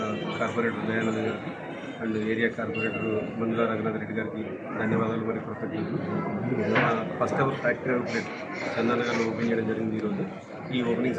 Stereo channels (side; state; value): both; identical; correlation 1.00